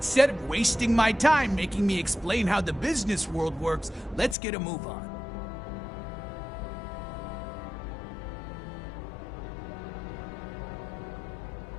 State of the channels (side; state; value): right; drops out; at 4.4 s